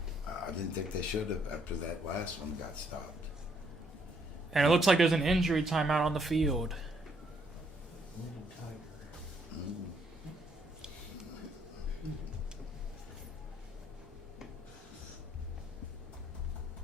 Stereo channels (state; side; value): normal; both; correlation 0.70